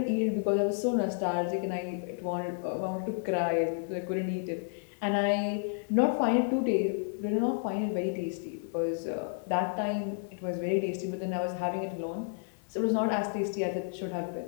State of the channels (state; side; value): silent; right; digital silence